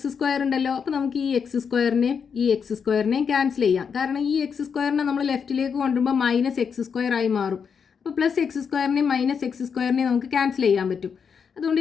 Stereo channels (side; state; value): right; quieter; 6.5 dB